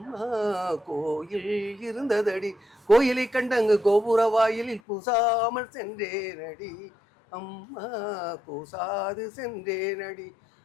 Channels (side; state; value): right; drops out; at 4.8 s